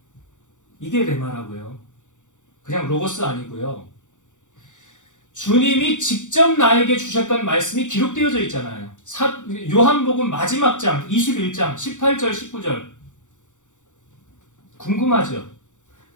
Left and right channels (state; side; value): late; right; 0.85 ms